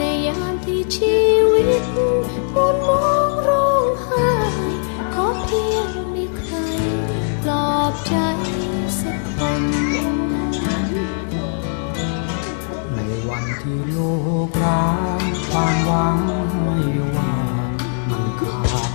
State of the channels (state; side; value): silent; right; 66 dB below the other